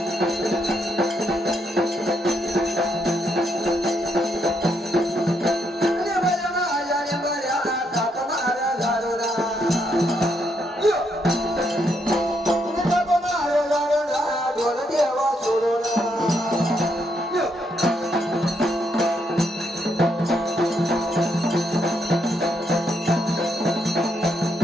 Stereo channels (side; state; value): both; normal; correlation 0.76